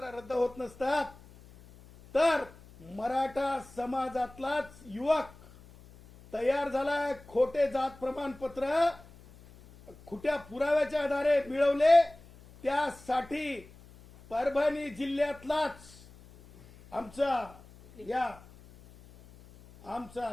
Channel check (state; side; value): noise; left; hum, 22 dB below the sound